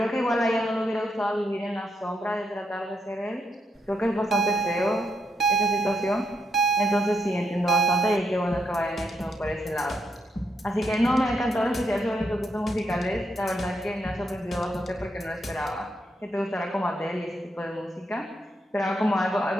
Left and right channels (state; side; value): normal; both; correlation 0.80